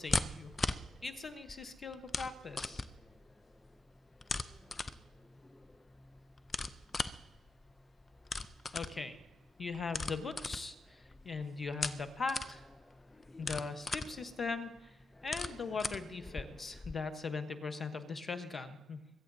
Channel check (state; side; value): quieter; right; 3.3 dB